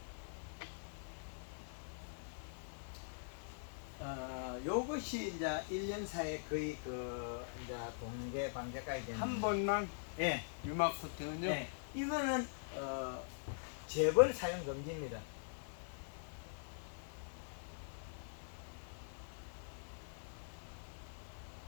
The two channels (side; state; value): right; silent; digital silence